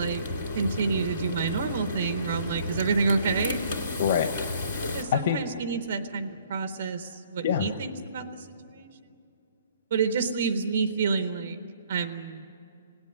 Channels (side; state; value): both; inverted; correlation -0.59